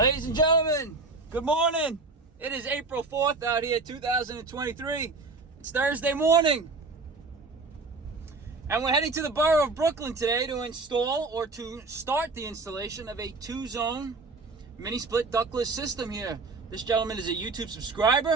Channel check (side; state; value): left; quieter; 3.7 dB